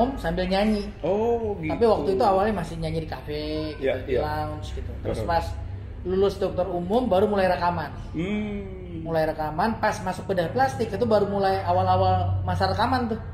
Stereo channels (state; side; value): identical; both; correlation 1.00